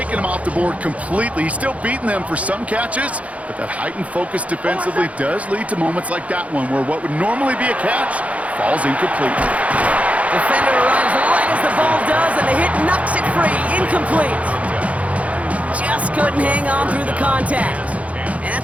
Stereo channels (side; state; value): left; late; 0.066 ms